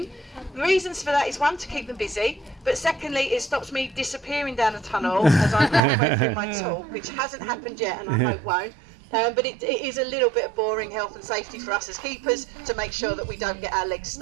The reasons for that is, one, to keep them busy, but secondly, it stops me disappearing down a tunnel as I'm halfway through my talk, which hasn't happened yet and I hope won't. But it is a little bit of boring health and safety for us as keepers to make sure that we don't get our legs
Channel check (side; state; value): left; drops out; at 5.8 s